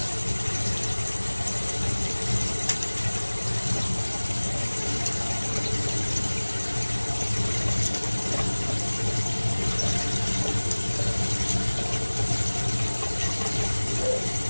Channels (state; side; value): inverted; both; correlation -1.00